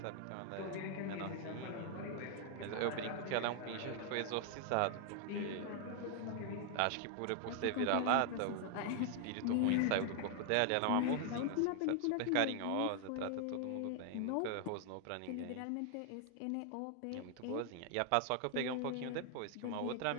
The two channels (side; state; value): both; different; correlation 0.00